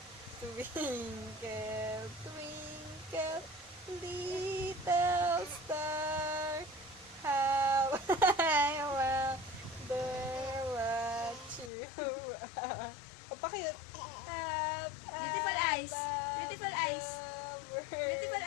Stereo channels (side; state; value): right; drops out; at 11.7 s